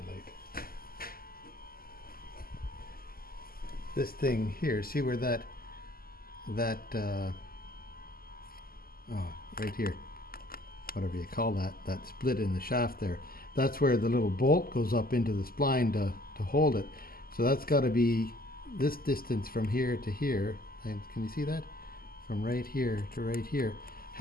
light? This thing here, see where that right here, whatever you call that split in the shaft there, that's where the little bolt goes up into the spline to hold it. So that's got to be this distance from here to here, and can you see that? From right here to right here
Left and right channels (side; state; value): right; late; 0.43 ms